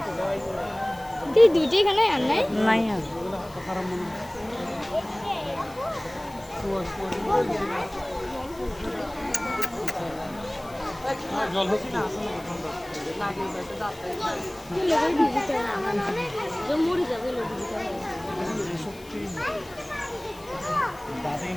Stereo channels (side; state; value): left; noise; hiss, 23 dB below the sound